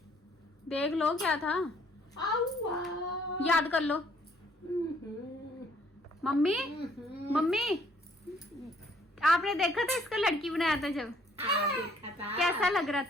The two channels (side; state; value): both; normal; correlation 0.63